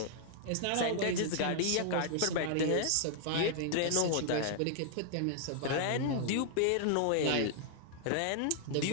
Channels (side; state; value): both; different; correlation -0.01